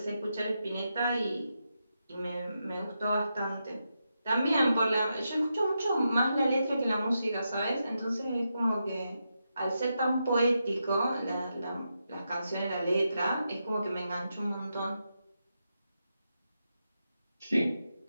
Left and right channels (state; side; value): inverted; both; correlation -0.86